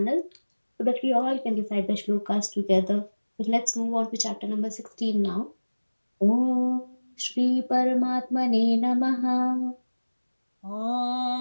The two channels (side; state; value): both; inverted; correlation -1.00